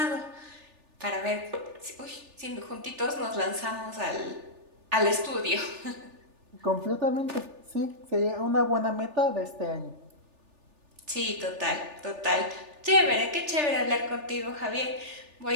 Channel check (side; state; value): left; late; 3.4 ms